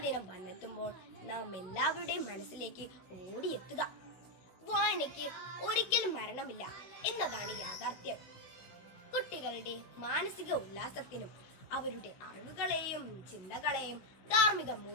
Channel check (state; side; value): late; right; 16 ms